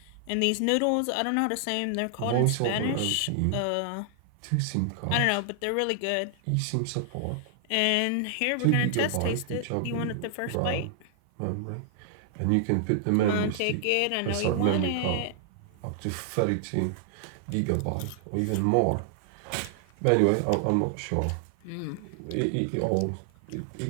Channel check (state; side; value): different; both; correlation 0.00